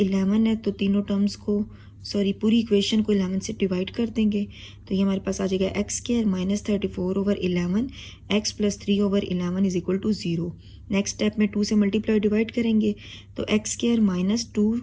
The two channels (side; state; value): both; identical; correlation 1.00